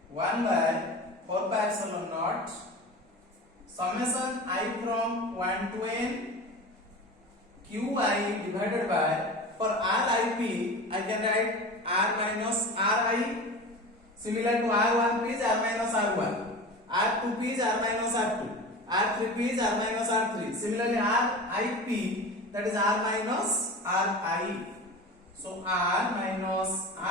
1 by 4 pi epsilon naught summation I from 1 to n Qi divided by, for Rip I can write R minus Ri. Similar to R1P is R minus R1, R2P is R minus R2, R3P is R minus R3. Similarly Rip, that is R minus Ri. So R minus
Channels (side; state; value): both; normal; correlation 0.32